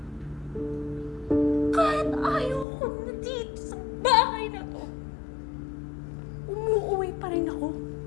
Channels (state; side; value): drops out; right; at 2.7 s